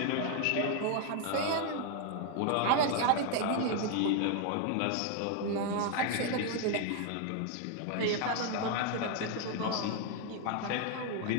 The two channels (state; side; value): different; both; correlation 0.00